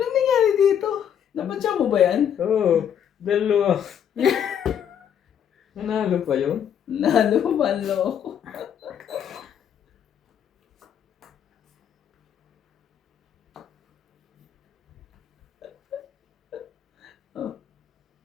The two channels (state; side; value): quieter; right; 8.9 dB